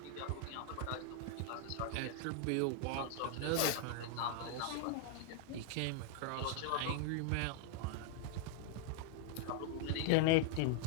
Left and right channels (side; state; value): both; different; correlation 0.00